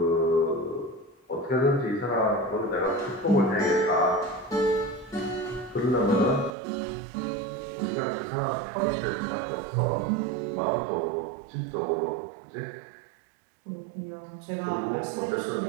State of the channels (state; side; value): drops out; left; at 6.6 s